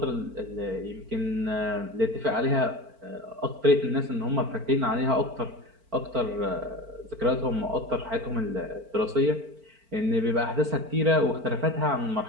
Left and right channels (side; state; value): left; late; 4.5 ms